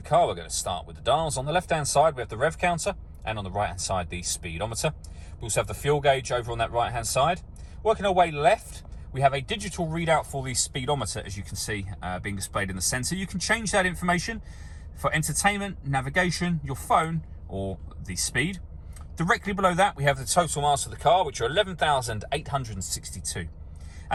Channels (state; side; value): identical; both; correlation 1.00